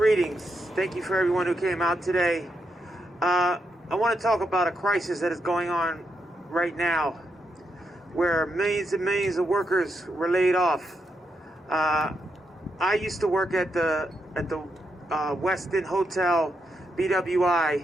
Thank you for everyone who came out today. I want to talk about a crisis that is going on right now, where millions and millions of workers were laid off. I used to work at the Westin Hotel,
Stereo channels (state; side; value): normal; both; correlation 0.82